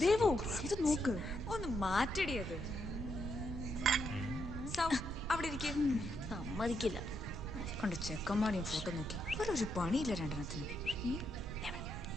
Devu, ഇത് നോക്ക്. ഒന്ന് മാറ്റടിയത്. സൗ അവിടെ ഇരിക്കും. സമ്മതിക്കില്ല. കണ്ട് ചെക്കന്മാരെയും ഫോട്ടോ നോക്കി ഒരു പണിയില്ല രണ്ടെണ്ണത്തിന്.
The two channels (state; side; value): noise; right; rumble, 8 dB below the sound